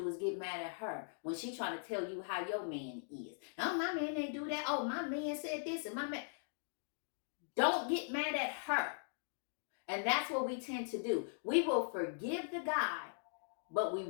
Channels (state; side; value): silent; right; digital silence